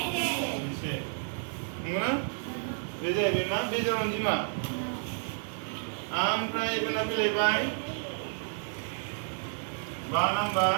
7 नंगौना बे जाहैबाय मा बेजोर अनजिमा ओमफ्राय बेना फैलायबाय 5 नाम्बार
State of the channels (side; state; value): left; silent; 57 dB below the other